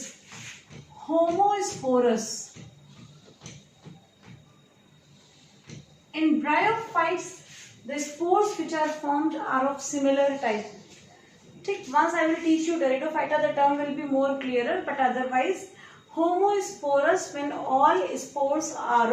homosporous. In bryophytes, the spores which are formed are of similar type. Once I will teach you pteridophyta, the term will be more clearer, but otherwise homosporous when all spores are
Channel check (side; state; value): both; identical; correlation 1.00